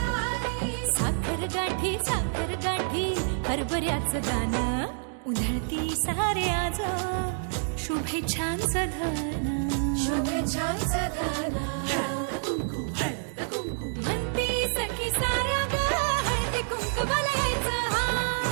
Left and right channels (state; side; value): silent; left; digital silence